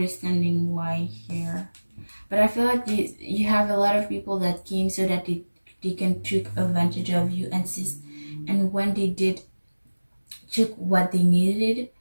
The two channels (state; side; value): inverted; both; correlation -1.00